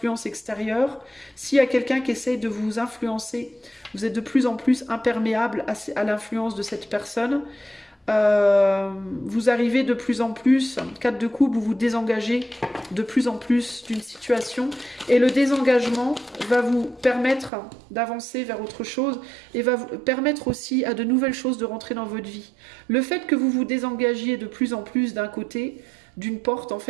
extérieures. S'il y a quelqu'un qui essaye de vous influencer, vous êtes de plus en plus imperméable à l'influence de cette personne. Vous arrivez de plus en plus, 4 de coupe, vous vous désengagez de plus en plus d'une situation et le désengagement va vous permettre d'avancer vers autre chose et va vous permettre aussi à de nouvelles choses de rentrer dans votre vie. Le fait que vous vous désengagiez de plus en plus d'un côté, d'une porte, en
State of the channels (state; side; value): drops out; left; at 17.5 s